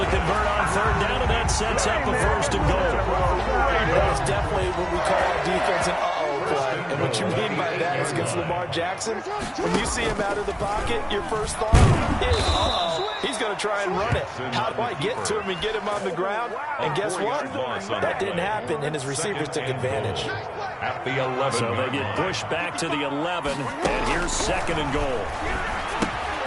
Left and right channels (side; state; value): both; identical; correlation 1.00